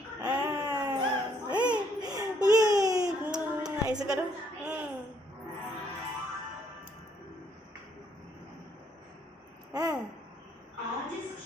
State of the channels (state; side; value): normal; both; correlation 0.69